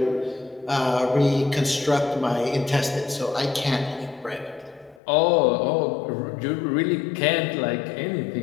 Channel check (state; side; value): drops out; right; at 5.0 s